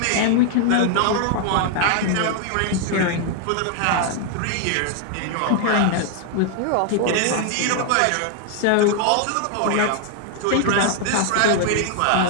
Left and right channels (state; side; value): different; both; correlation 0.00